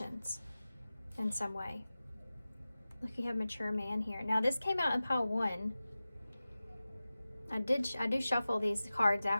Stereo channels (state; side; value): inverted; both; correlation -0.96